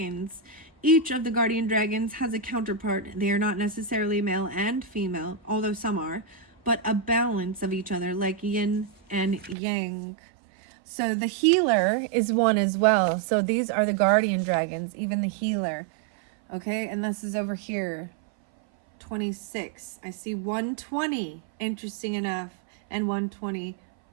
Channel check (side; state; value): left; drops out; at 9.6 s